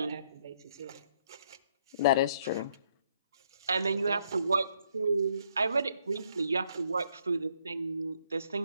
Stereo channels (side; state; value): both; inverted; correlation -0.70